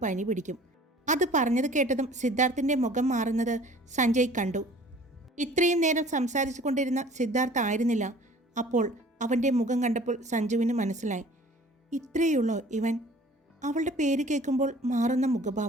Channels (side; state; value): both; normal; correlation 0.49